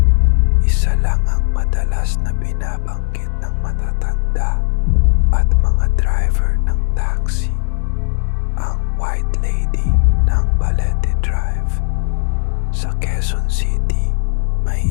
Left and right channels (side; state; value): right; silent; digital silence